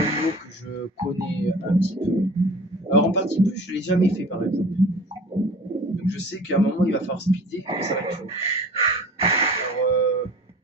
niveau que je connais un petit peu. Alors en partie plus, je ne l'ai jamais fait par exemple. Donc je sais qu'à un moment, il va falloir speeder et ça va être chaud. Alors,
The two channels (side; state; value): both; normal; correlation 0.42